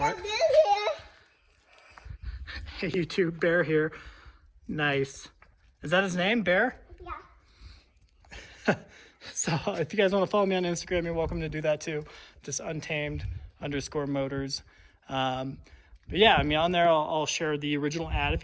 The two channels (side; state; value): both; identical; correlation 1.00